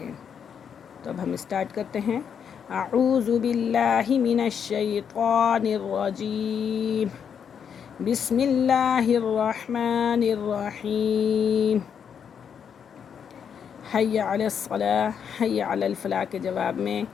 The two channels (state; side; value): quieter; right; 7.5 dB